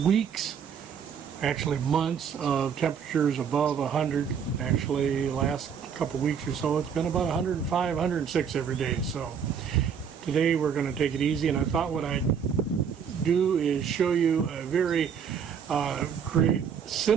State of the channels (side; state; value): left; quieter; 7.2 dB